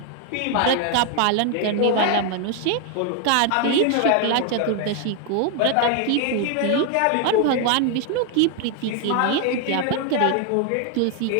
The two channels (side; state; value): both; different; correlation 0.01